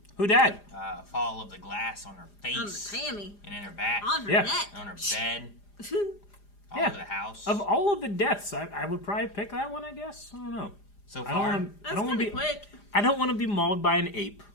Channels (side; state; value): right; late; 4.9 ms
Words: Who died? Fall of the glass on her face. On the Tammy. And in her back. On her Yeah. neck. On her bed. All Yeah. over the house. Of all of the deaths, I would probably pick that one, I guess. I don't know. So I far, don't That's want to pretty be quick. I don't want to be mauled by an ape.